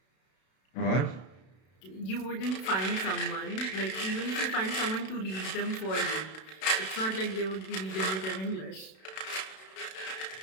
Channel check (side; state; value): right; late; 32 ms